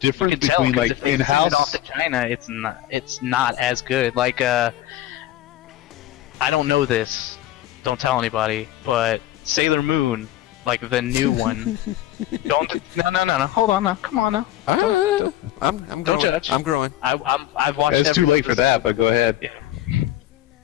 You can tell, between 'cause like if they in-house? send it off to China, it's not as good. Like I don't know this. Don't tell anybody. But Sailor Moon, like the new one. No. Hold on now. Come on now. I'm Don't growing. judge. I'm growing. I've watched. It's too late for that, but go ahead. Yeah.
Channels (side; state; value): right; quieter; 13.9 dB